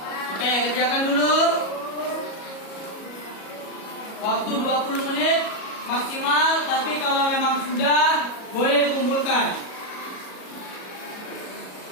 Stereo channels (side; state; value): right; late; 37 ms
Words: Oke, kerjakan dulu. Waktu 20 menit maksimal, tapi kalau memang sudah boleh dikumpulkan.